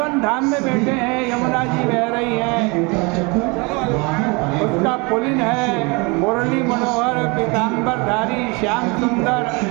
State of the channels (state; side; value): quieter; left; 28.4 dB